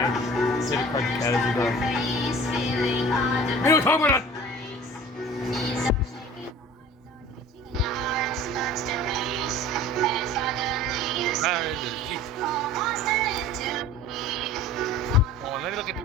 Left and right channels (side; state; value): both; normal; correlation 0.44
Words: say the cartoon cat is a girl. We don't talk about that. Oh, let me look at the